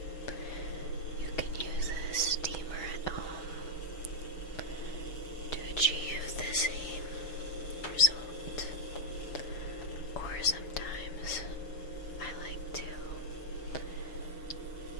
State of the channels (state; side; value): late; right; 6.8 ms